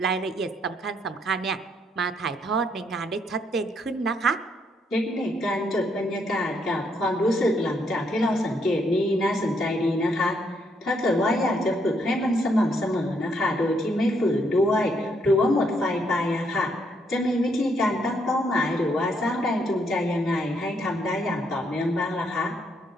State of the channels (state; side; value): normal; both; correlation 0.74